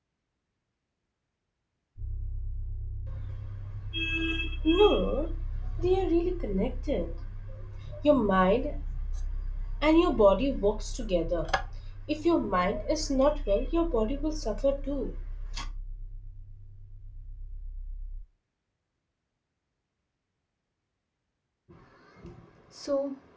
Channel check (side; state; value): both; identical; correlation 1.00